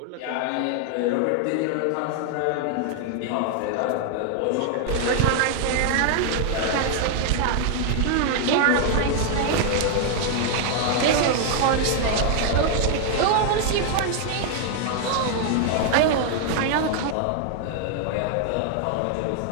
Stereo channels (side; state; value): both; different; correlation 0.00